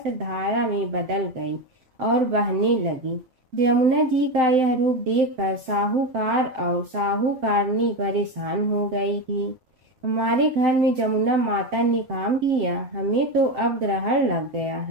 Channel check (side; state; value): left; late; 7.8 ms